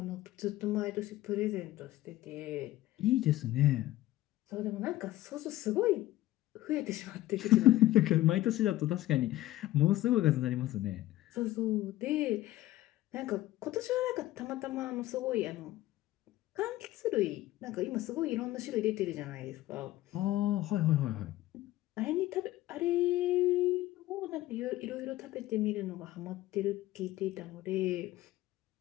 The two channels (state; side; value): quieter; right; 15.8 dB